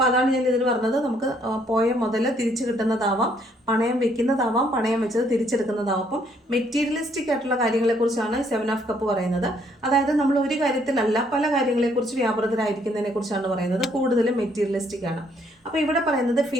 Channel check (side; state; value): both; normal; correlation 0.67